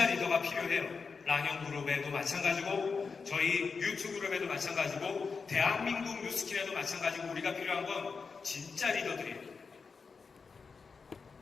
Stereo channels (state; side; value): quieter; right; 5.0 dB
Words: 리더가 필요해요. 랑형그룹에도 마찬가지고 저희 유튜그룹에도 마찬가지고 대한민국 뉴스킨에도 마찬가지고 우리가 필요한 건 진짜 리더들이에요.